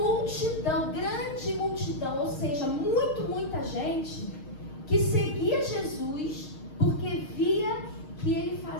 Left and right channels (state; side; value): late; right; 6.5 ms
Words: grande multidão, ou seja, muita gente que seguia Jesus porque via que ele